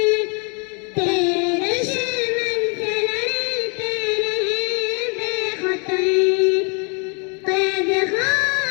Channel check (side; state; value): right; quieter; 35.7 dB